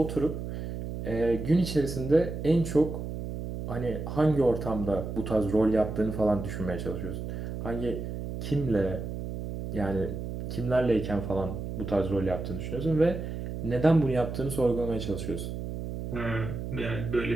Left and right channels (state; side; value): noise; right; hum, 6 dB below the sound